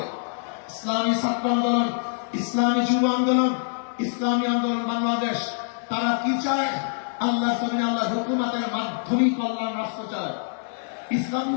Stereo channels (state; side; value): silent; right; 62 dB below the other